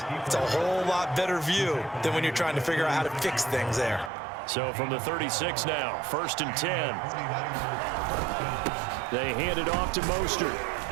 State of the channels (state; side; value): drops out; left; at 4.1 s